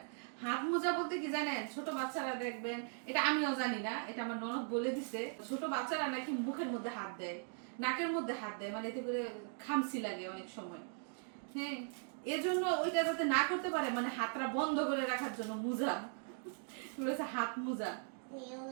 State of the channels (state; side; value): silent; left; 52 dB below the other